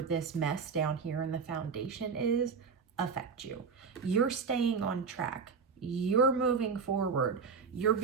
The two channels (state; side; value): quieter; left; 5.5 dB